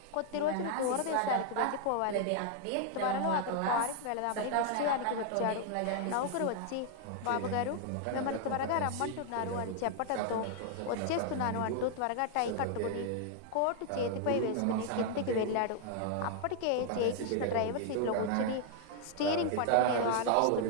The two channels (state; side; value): different; both; correlation 0.00